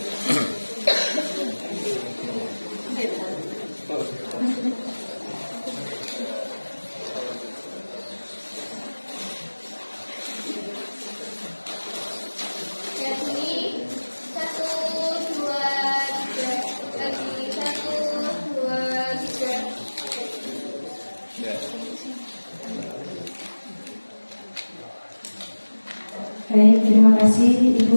Baik, terima kasih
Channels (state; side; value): inverted; both; correlation -1.00